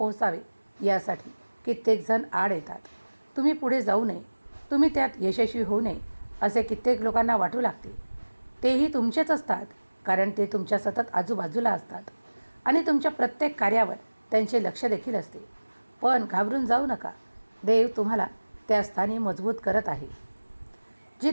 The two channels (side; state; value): both; inverted; correlation -1.00